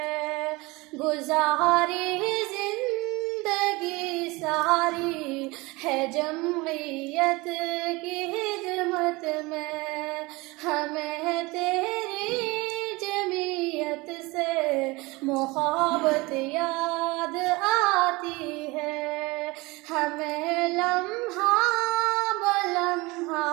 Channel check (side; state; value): left; quieter; 23.5 dB